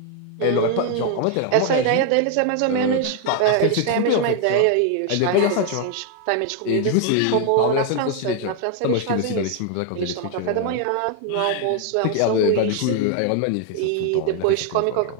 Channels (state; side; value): different; both; correlation 0.00